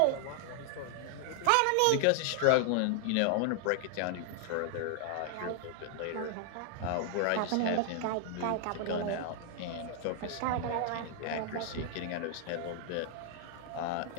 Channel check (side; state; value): both; different; correlation 0.00